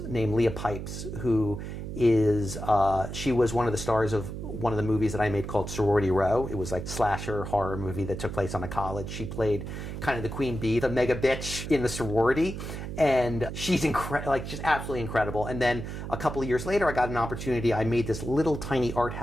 named Leah Pipes, who she was one of the stars of one of the movies that I made called Sorority Row. It was like a slasher horror movie that took place on a college. She played kind of the queen bee, the mega bitch in the sorority, and she's just absolutely incredible. And then a couple of years later, I got an opportunity. I made this little tiny art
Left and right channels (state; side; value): noise; right; hum, 7 dB below the sound